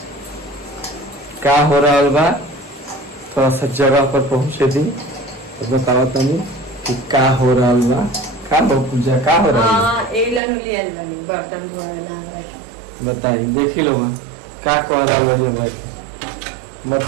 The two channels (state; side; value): drops out; left; at 10.4 s